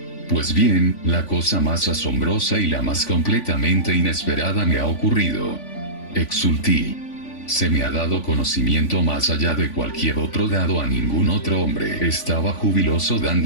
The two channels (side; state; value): right; late; 3.5 ms